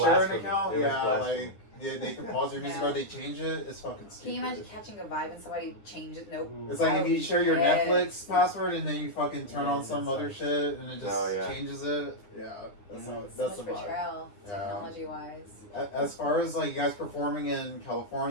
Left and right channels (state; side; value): late; right; 9.9 ms